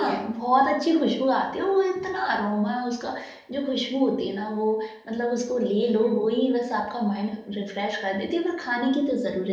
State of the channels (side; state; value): both; identical; correlation 1.00